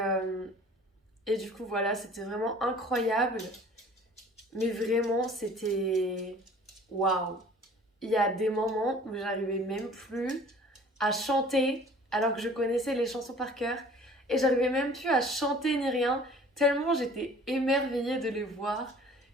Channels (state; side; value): normal; both; correlation 0.49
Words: du coup, voilà, c'était vraiment incroyable. Mais vraiment, c'était... Waouh! Il y a des moments où j'arrivais même plus à chanter, alors que je connaissais les chansons par cœur. Et j'arrivais même plus à chanter ni rien, tellement j'étais émerveillée de les voir.